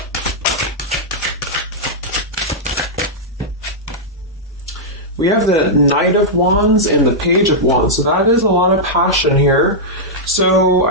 We have the Knight of Wands and the Page of Wands. So that is a lot of passion here. So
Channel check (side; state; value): both; normal; correlation -0.08